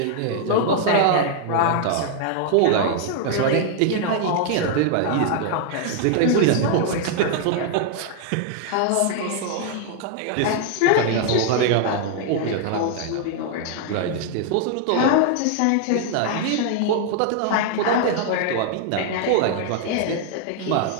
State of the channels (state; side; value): different; both; correlation 0.00